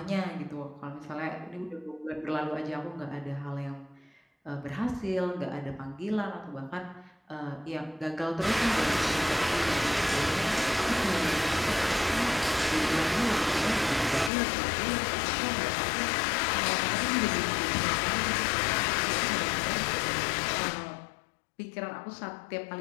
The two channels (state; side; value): drops out; right; at 14.3 s